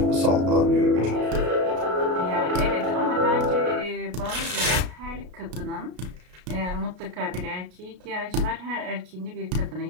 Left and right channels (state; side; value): late; left; 33 ms